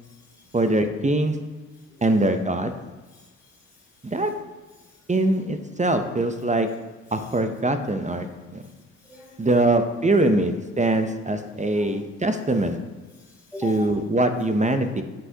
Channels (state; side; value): normal; both; correlation 0.55